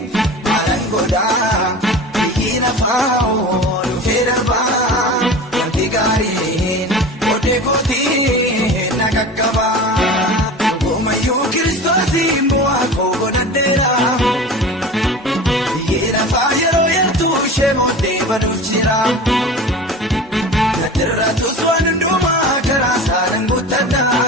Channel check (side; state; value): both; normal; correlation 0.34